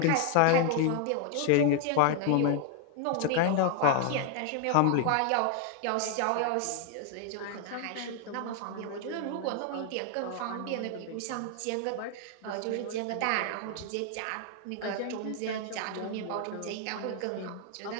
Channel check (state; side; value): different; both; correlation 0.00